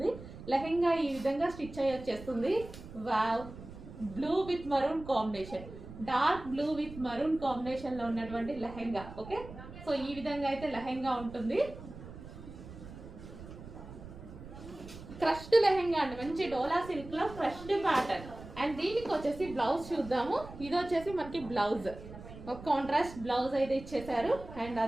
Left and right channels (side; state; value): right; noise; rumble, 14 dB below the sound